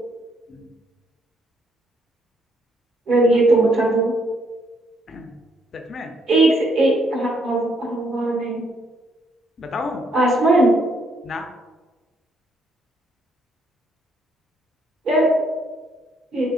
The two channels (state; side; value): normal; both; correlation 0.72